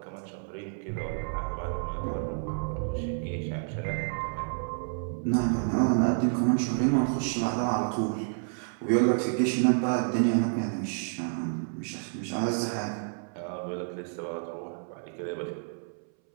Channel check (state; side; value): silent; left; 58 dB below the other